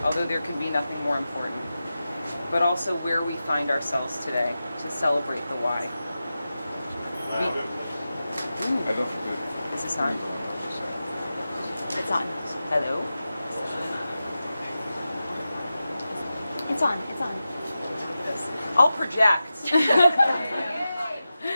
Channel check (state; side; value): inverted; both; correlation -0.93